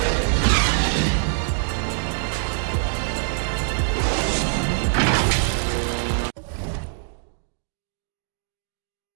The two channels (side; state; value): left; silent; digital silence